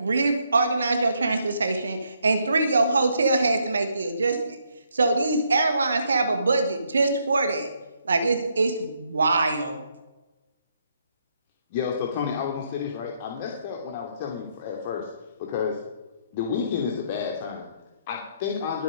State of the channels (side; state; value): both; inverted; correlation -0.74